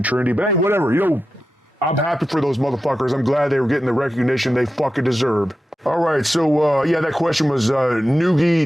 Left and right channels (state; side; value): normal; both; correlation 0.91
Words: trendy. But hey, whatever. You know, I'm happy for those motherfuckers. I'm glad they were getting the recognition they fucking deserve. All right, so yeah, that question was